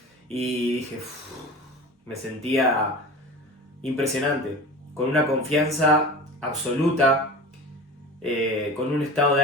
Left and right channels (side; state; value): both; normal; correlation 0.34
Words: y dije, me sentía impresionante, con una confianza absoluta, con un estado